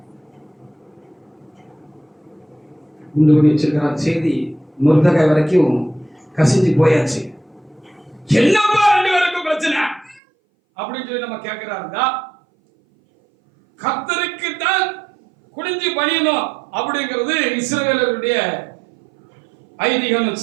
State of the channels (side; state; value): left; drops out; at 10.2 s